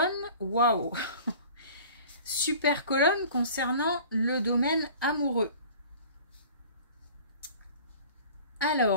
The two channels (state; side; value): inverted; both; correlation -0.44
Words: waouh! Super colonne concernant le domaine amoureux.